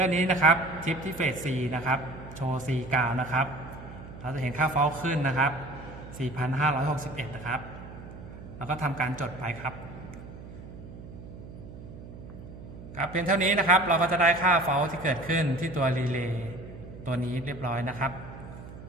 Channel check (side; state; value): right; noise; hum, 14 dB below the sound